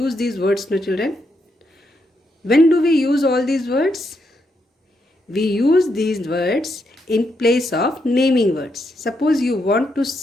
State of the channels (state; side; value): normal; both; correlation 0.80